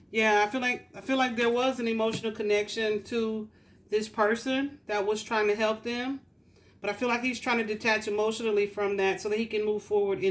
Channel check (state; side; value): identical; both; correlation 1.00